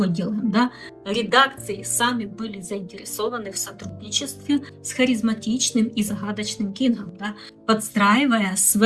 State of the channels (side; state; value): both; identical; correlation 1.00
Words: делаем, да? Редакции сами были заинтересованы в сотрудничестве с харизматичным и загадочным Кингом, да, подстраивая